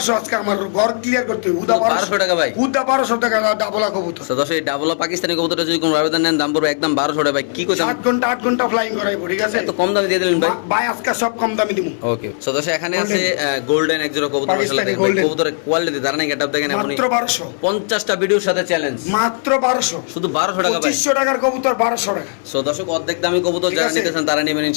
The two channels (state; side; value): silent; right; 64 dB below the other